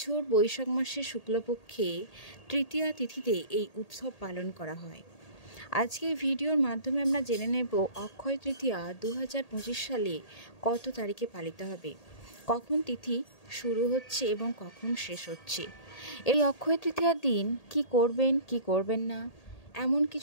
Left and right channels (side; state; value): right; late; 1.8 ms